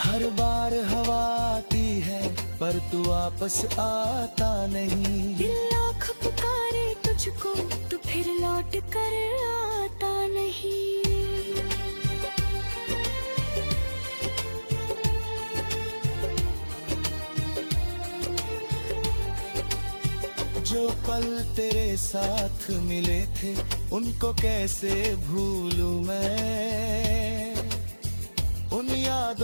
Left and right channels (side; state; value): both; inverted; correlation -1.00